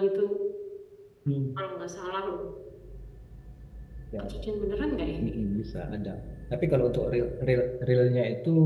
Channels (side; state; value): both; identical; correlation 1.00